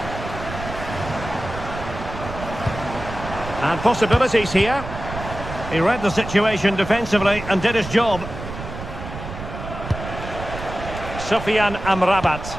And possibilities here. He read the situation defensively and did his job. Sufyan Amrabat.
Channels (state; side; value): noise; right; rumble, 9 dB below the sound